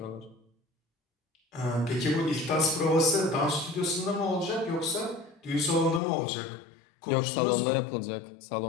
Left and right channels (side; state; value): right; drops out; at 6.0 s